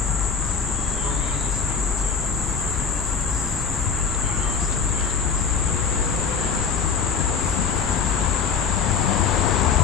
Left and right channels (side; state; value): right; quieter; 5.9 dB